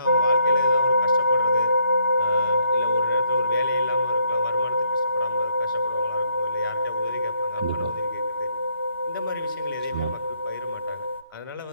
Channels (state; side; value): inverted; both; correlation -0.71